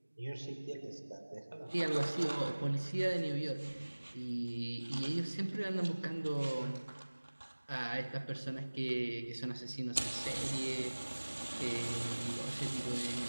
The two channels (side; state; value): both; inverted; correlation -1.00